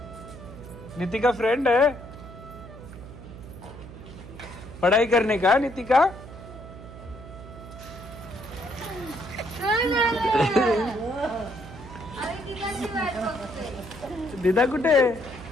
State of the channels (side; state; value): right; noise; hum, 15 dB below the sound